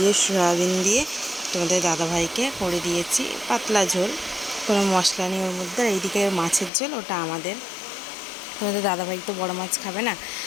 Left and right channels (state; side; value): drops out; right; at 6.7 s